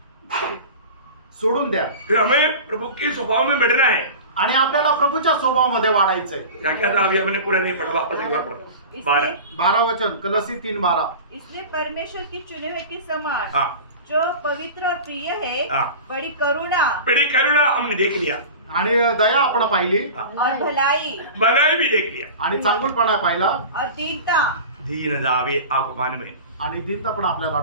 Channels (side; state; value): both; inverted; correlation -0.34